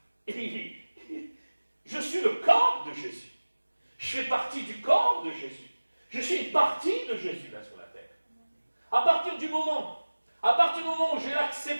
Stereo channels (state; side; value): inverted; both; correlation -1.00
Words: Et je suis le corps de Jésus. Je fais partie du corps de Jésus. Je suis une partie de Jésus là sur la terre. À partir du moment où j'ai